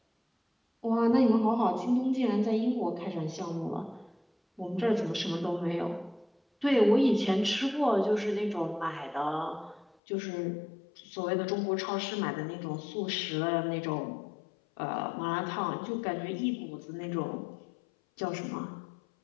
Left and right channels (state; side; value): drops out; right; at 10.0 s